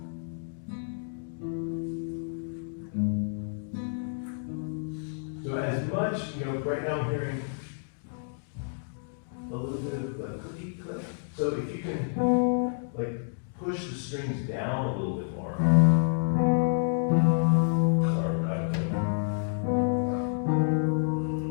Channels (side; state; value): right; silent; digital silence